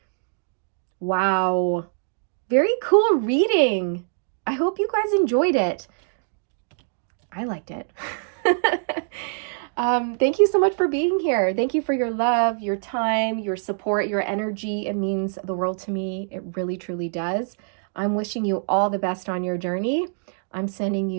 Wow. Very cool reading. I hope you guys enjoyed it. I liked it. Thank you so much for being here. Thank you for your love, your time, your support, your energy. It means the world to me. It really, truly does. I'm wishing you all the best on your journey. I'm sending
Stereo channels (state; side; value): silent; left; digital silence